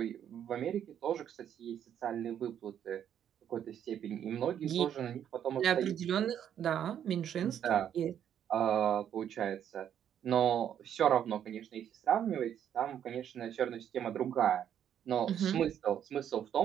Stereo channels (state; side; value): quieter; left; 9.5 dB